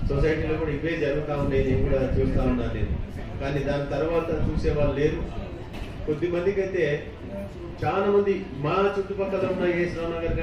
సొసైటీలో కూడా ఇవే జరుగుతూ ఉండేది, నేను కూడా చూస్తూ ఉన్నాను నేను. కానీ దాని తర్వాత చూసే వాళ్ళు లేరు. కొద్దిమందికి అయితే చాలా మంది మా చుట్టుపక్కల ఉన్న ఏశ్వరావు నగర్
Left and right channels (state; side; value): identical; both; correlation 1.00